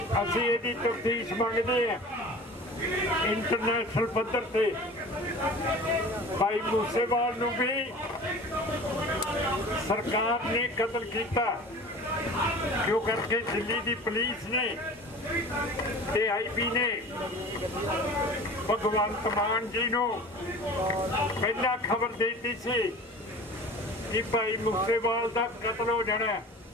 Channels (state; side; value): normal; both; correlation 0.39